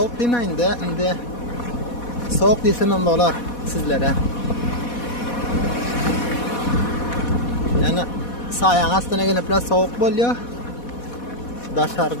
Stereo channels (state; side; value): late; right; 4.1 ms